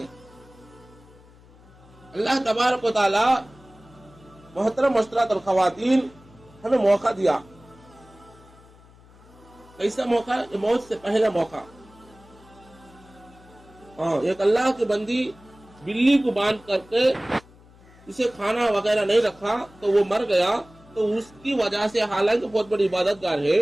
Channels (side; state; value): left; noise; hum, 25 dB below the sound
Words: اللہ تبارک و تعالی محترم مسٹرات اور خواتین ہمیں موقع دیا، کیسا موقع؟ موت سے پہلا موقع۔ ایک اللہ کی بندی بلی کو باندھ کر کے اسے کھانا وغیرہ نہیں رکھا تو وہ مر گیا، تو اس کی وجہ سے، حالانکہ بہت بڑی عبادت گار ہے،